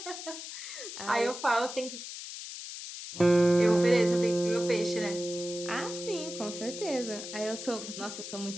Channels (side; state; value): left; noise; hiss, 9 dB below the sound